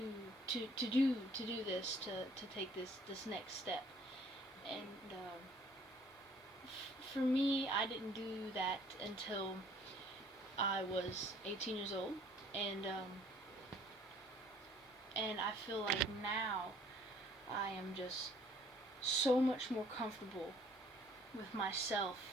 do this, to take this next step. And for me, I didn't do that until I was 18 years old, and I feel like now I am just so much more comfortable with myself,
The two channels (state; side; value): normal; both; correlation 0.58